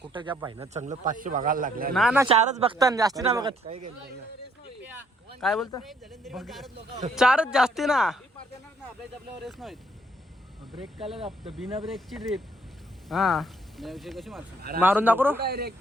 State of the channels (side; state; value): both; normal; correlation 0.67